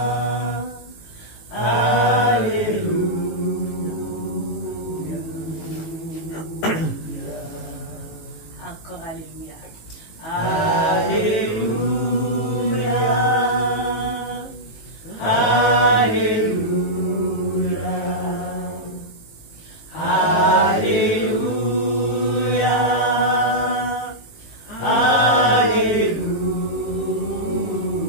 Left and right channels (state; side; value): late; right; 18 ms